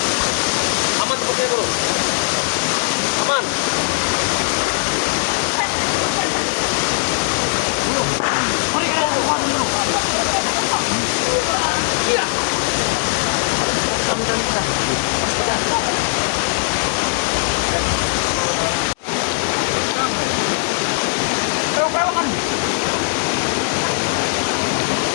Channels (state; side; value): silent; right; digital silence